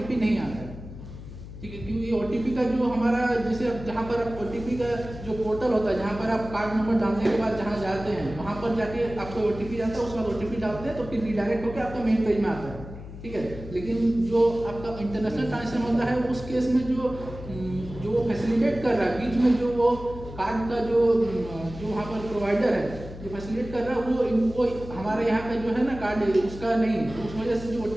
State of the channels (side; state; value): left; noise; hum, 13 dB below the sound